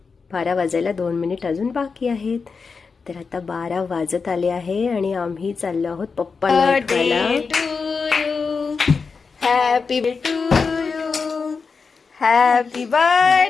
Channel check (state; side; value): quieter; right; 5.0 dB